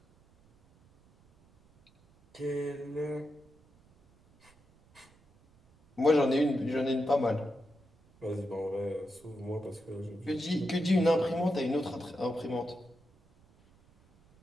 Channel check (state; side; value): noise; right; rumble, 30 dB below the sound